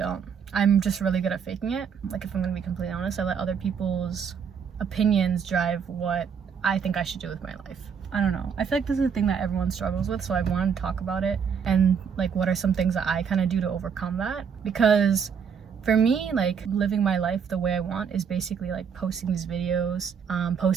I'm just really good at faking it. Like, if I'm gonna be completely honest, I let other people's opinions drive what I think I should do with my life. I don't know. I feel like this is a thing that everyone struggles with, so I wanted to talk about it and like what are some things that I kind of do to overcome that. Because for me, like, living my life the way I want is basically like posting these videos,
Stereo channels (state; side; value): quieter; left; 6.8 dB